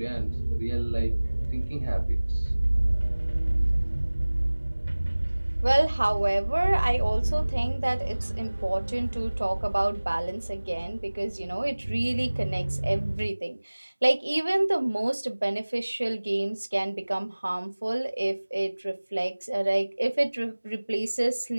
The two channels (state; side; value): inverted; both; correlation -1.00